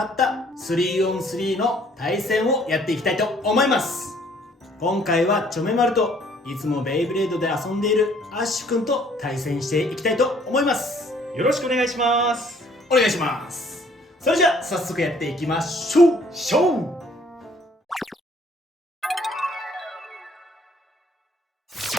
った 3on3 の対戦をやっていきたいと思います。今回はチョメマルといつもベイブレードで遊んでいるアッシュくんと対戦していきたいと思います。よろしくお願いします。お願いします。それじゃあ早速やっていきましょう。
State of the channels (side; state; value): both; normal; correlation 0.60